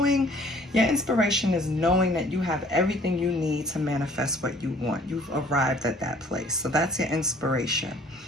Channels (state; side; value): normal; both; correlation 0.56